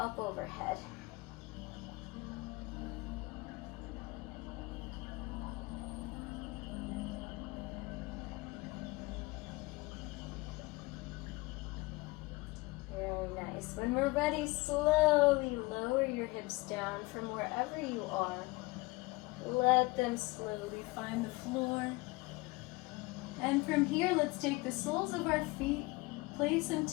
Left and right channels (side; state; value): right; quieter; 23.3 dB